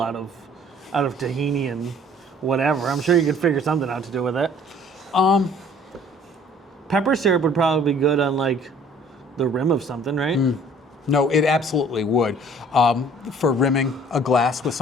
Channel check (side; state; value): both; normal; correlation 0.54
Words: out of tahini and whatever. I'm sure you could figure something out to do with it. Pepper syrup would probably be good on like the rim of something, right? No, it absolutely would. For rimming a glass with